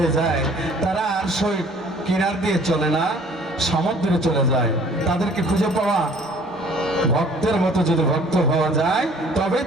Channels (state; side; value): normal; both; correlation 0.54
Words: যায় তারা আর সই কিনার দিয়ে চলে না সমুদ্রে চলে যায় তাদেরকে খুঁজে পাওয়া ভক্তের মতো যদি ভক্ত হওয়া যায় তবে